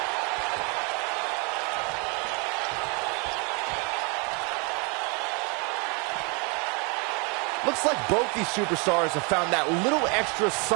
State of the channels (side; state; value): left; quieter; 32.8 dB